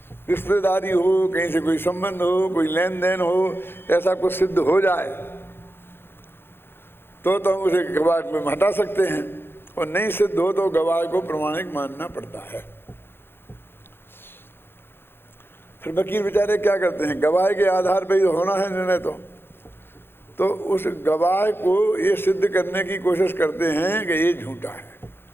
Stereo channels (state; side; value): late; right; 0.11 ms